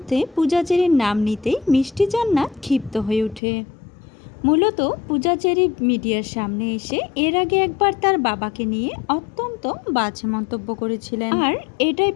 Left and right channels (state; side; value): drops out; right; at 3.4 s